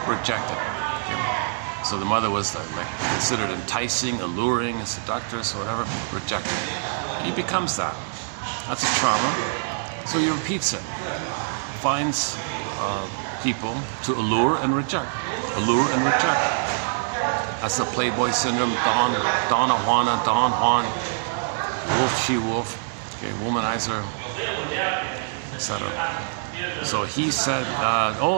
rejected. Okay. So the mother was like considered enticing, alluring, seductress, or whatever, rejected. He becomes that. That's a trauma. So he repeats it. Finds people to allure and reject. Allure and reject. That's the Playboy syndrome. Donna Juana, Don Juan, wolf, she wolf, okay, womanizer, etc. So he said,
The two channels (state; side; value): silent; left; digital silence